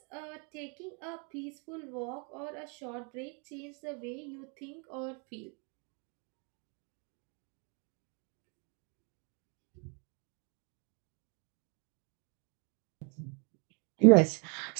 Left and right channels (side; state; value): left; quieter; 36.4 dB